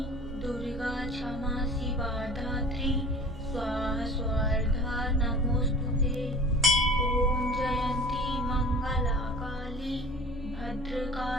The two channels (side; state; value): both; normal; correlation 0.41